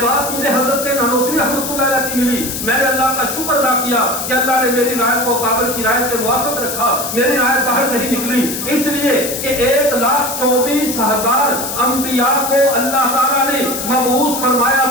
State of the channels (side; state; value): left; noise; hiss, 5 dB below the sound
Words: بات مجھے حضرت نانوتوی رحمۃ اللہ علیہ کی ملی, میں نے اللہ کا شکر ادا کیا کہ اللہ نے میری رائے کو قابل کی رائے کے موافق رکھا. میری رائے باہر نہیں نکلی, اس لیے کہ 1,24,000 انبیاء کو اللہ تعالیٰ نے مبعوث فرمایا